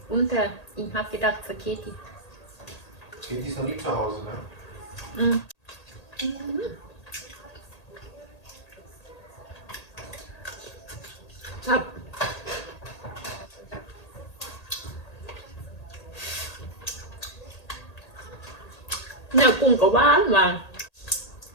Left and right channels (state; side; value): late; right; 1.8 ms